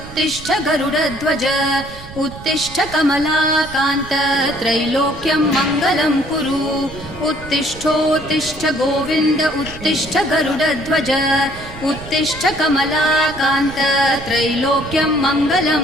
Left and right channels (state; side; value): noise; right; rumble, 15 dB below the sound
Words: गरुडध्वज उत्तिष्ठ कमलाकान्त त्रैलोक्यं मङ्गलं कुरु उत्तिष्ठोत्तिष्ठ गोविन्द उत्तिष्ठ गरुडध्वज उत्तिष्ठ कमलाकान्त त्रैलोक्यं